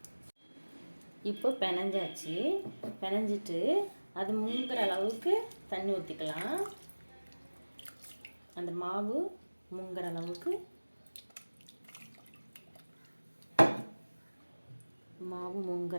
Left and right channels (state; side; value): inverted; both; correlation -1.00